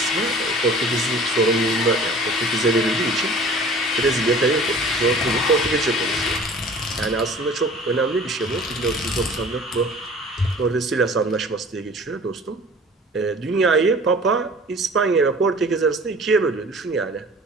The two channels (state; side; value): normal; both; correlation 0.45